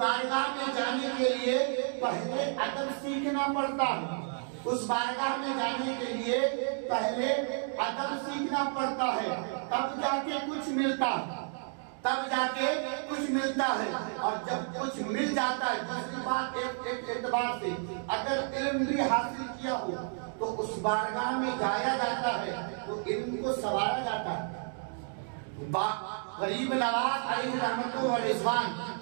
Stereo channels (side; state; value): left; silent; 57 dB below the other